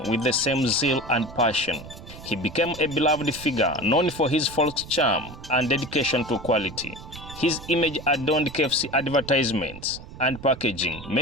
with the same zeal and passion. He became a beloved figure, known for his folk charm and dedication to quality. His image adorned KFC advertisements and packaging,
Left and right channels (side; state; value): right; noise; rumble, 15 dB below the sound